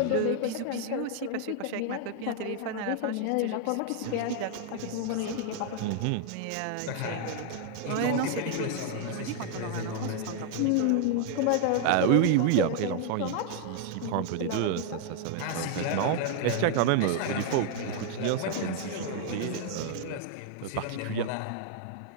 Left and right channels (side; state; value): both; different; correlation 0.00